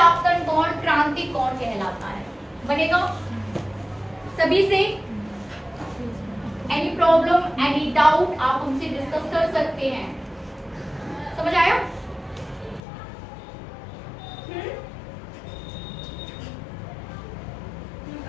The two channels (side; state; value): right; drops out; at 12.8 s